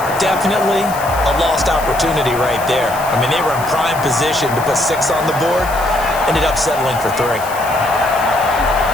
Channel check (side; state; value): left; noise; hiss, 14 dB below the sound